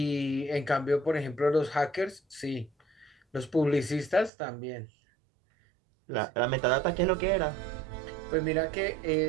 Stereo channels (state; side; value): drops out; left; at 4.3 s